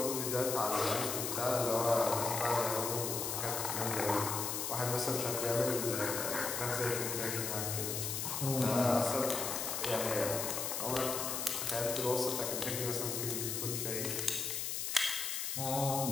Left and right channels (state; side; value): noise; left; hiss, 2 dB below the sound